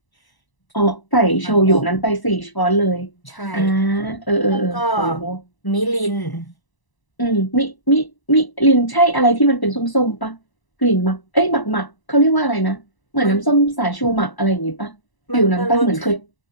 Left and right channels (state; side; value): late; right; 1.0 ms